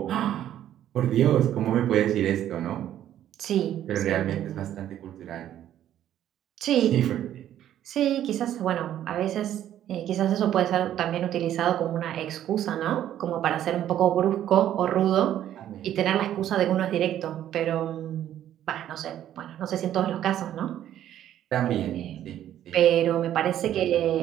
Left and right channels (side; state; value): left; quieter; 11.5 dB